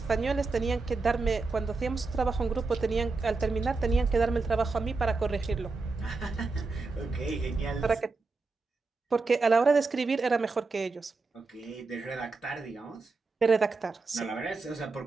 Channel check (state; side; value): quieter; left; 4.0 dB